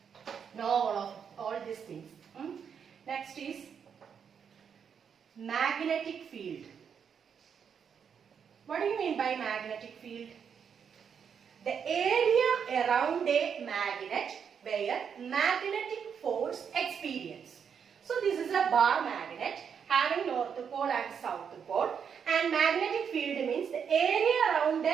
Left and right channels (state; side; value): quieter; left; 7.2 dB